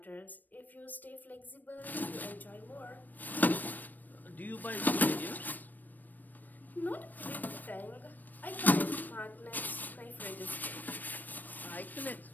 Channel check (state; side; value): late; right; 0.088 ms